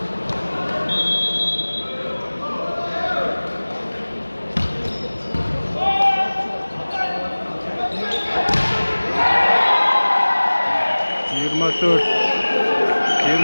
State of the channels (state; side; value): inverted; both; correlation -1.00